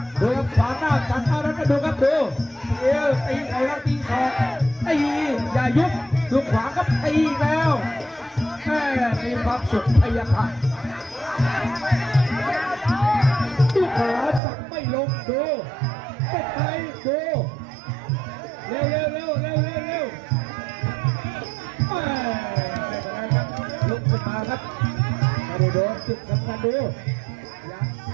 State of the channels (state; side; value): drops out; left; at 14.4 s